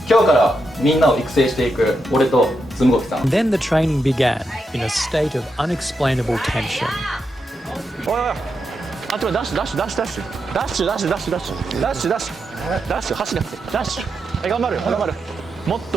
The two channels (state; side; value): normal; both; correlation 0.85